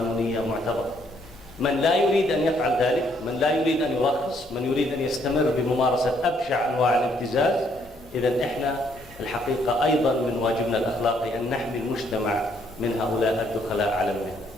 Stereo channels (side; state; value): both; normal; correlation 0.69